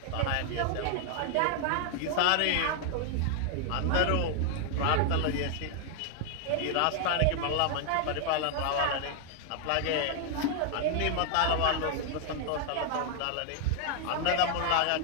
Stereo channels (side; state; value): both; different; correlation 0.00